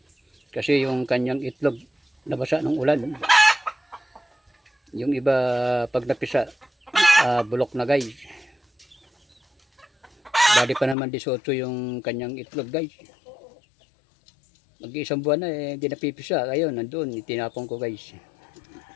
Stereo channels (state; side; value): drops out; right; at 11.0 s